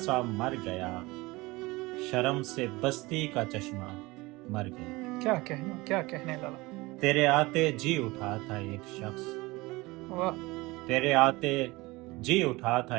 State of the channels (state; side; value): quieter; left; 22.0 dB